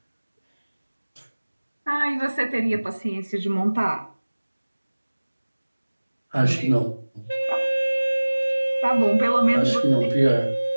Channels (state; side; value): inverted; both; correlation -1.00